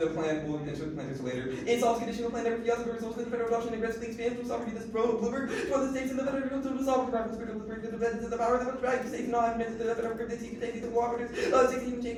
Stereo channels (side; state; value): both; identical; correlation 1.00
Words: plan will enter the plan later. It solves conditional plan never fiasco results in the federal adoption and aggressively expands from sovereignty. This Bloomberg for the states and the federal to the sovereign private spirit of the power that would drive the states not admit to the federal government to take the cooperatives. 16